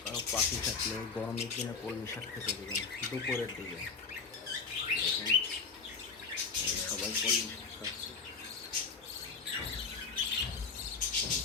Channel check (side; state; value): right; quieter; 5.2 dB